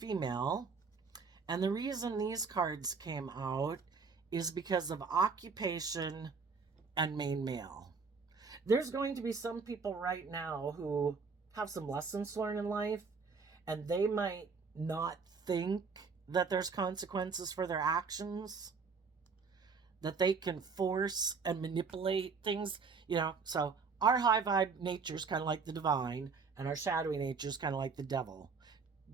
And the reason these cards came out is because of occupation and main male. There's going to be some people right now who have some lessons to learn in life, and they might not think that there's consequences for their actions, that they can force and manipulate things, you know. So our high vibe nature is kind of like the divine, and our shadowy nature is kind of like the devil.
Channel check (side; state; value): left; quieter; 5.0 dB